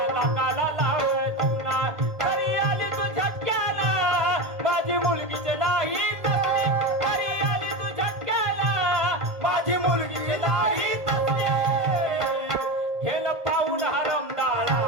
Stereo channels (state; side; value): late; left; 1.7 ms